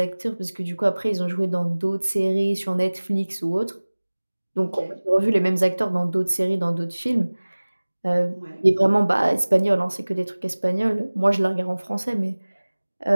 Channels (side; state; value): both; inverted; correlation -1.00